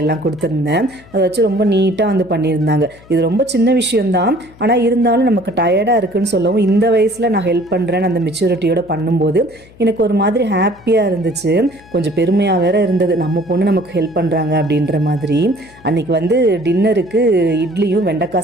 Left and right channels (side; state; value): left; noise; hum, 24 dB below the sound